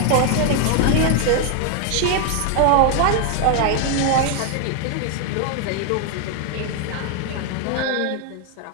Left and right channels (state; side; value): different; both; correlation 0.00